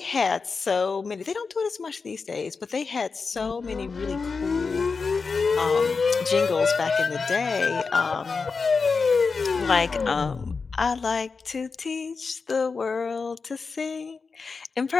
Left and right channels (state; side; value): quieter; right; 4.8 dB